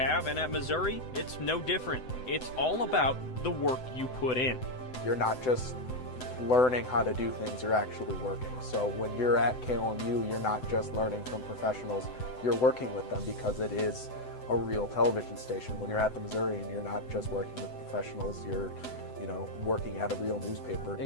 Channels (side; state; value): right; late; 7.9 ms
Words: and at Missouri, it's no different. It's all about the work you put in. You're not just learning how to do things, you're actually working. So when you're at KOMU, you're not just learning from professionals, you're working with them because it is a real television station. When you're at the Missourian, you're not just working with professionals, you're working at a real newspaper.